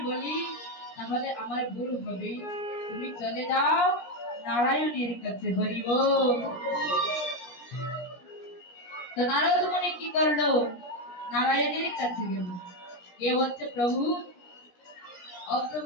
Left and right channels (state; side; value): late; right; 17 ms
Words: বলি তাহলে আমার ভুল হবে। তুমি চলে যাও নারায়ণের কাছে। হরি বল। তো নারদ মুনি কি করলো, নারায়ণের কাছে গেল, গিয়ে বলছে, প্রভু, ও